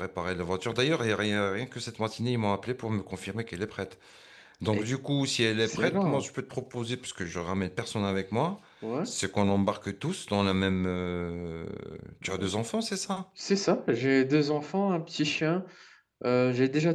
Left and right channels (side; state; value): both; identical; correlation 1.00